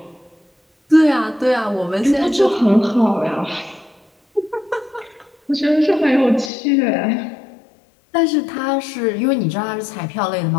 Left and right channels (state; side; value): drops out; right; at 6.5 s